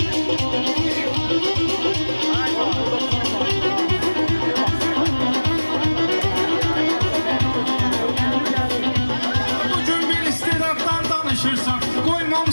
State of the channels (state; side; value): inverted; both; correlation -1.00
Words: Bugün bir istedaddan danışırsan,